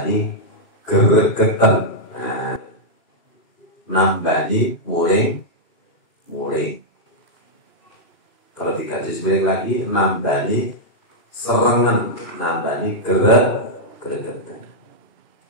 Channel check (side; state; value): right; late; 2.9 ms